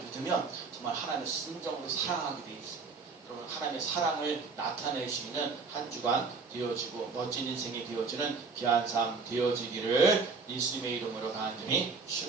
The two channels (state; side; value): quieter; left; 4.5 dB